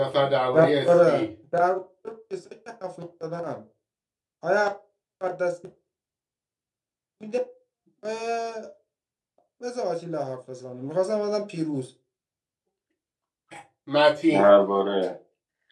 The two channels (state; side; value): identical; both; correlation 1.00